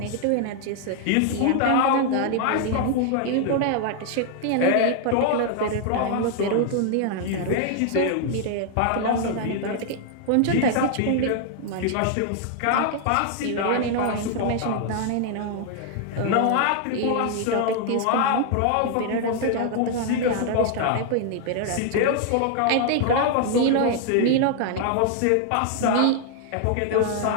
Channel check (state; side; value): different; both; correlation 0.00